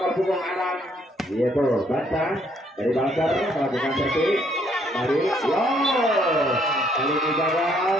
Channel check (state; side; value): normal; both; correlation 0.68